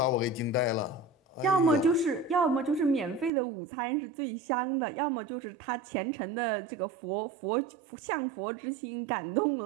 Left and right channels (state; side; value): drops out; left; at 3.3 s